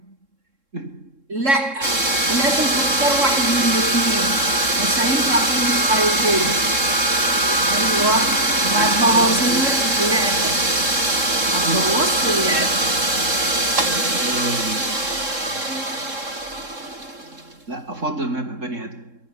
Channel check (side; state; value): left; late; 3.7 ms